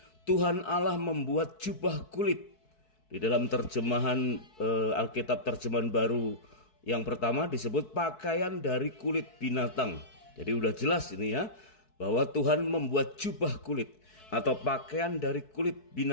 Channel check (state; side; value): late; right; 4.6 ms